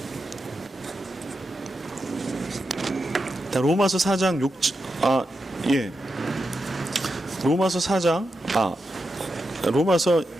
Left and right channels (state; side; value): normal; both; correlation 0.87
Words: 로마서 4장 6, 로마서